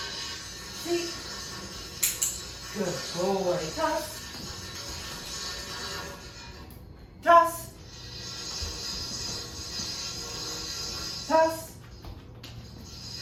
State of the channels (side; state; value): both; identical; correlation 1.00